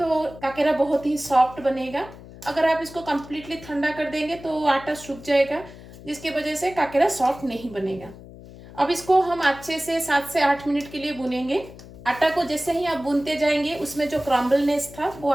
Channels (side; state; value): left; noise; hum, 17 dB below the sound